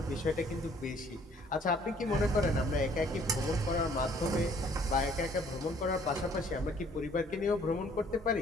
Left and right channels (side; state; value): both; normal; correlation 0.60